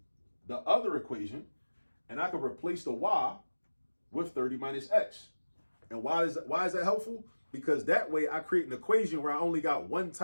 the other equation, and I can replace the y with 30 minus x. And why is that helpful? Because that way I create an equation where I only got one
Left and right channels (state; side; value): inverted; both; correlation -1.00